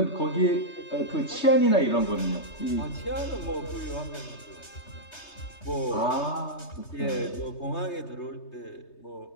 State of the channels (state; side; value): late; right; 3.3 ms